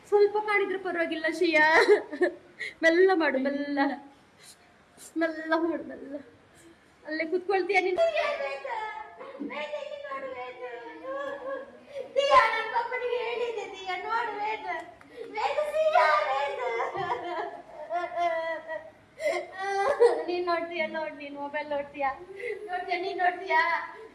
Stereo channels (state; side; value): identical; both; correlation 1.00